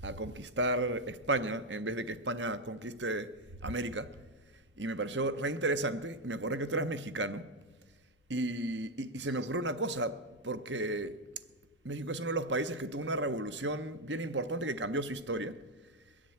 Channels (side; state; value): both; normal; correlation 0.06